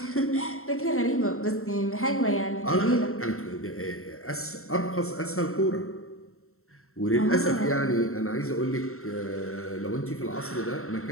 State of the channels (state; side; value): late; right; 0.63 ms